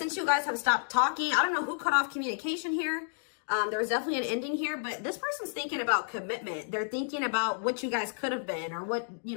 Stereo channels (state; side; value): silent; right; digital silence